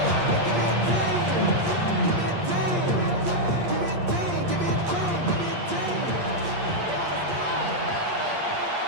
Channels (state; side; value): late; left; 8.5 ms